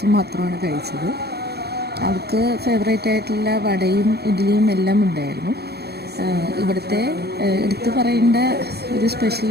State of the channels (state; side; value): late; left; 0.47 ms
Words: മാത്രമാണ് കഴിച്ചത്. അവൾക്ക് ഫേവറേറ്റ് ആയിട്ടുള്ള വടയും ഇഡ്ഡലിയും എല്ലാം ഉണ്ടായിരുന്നു. ഇവിടുത്തെ എടുത്തു പറയേണ്ട ഒരു സ്പെഷ്യൽ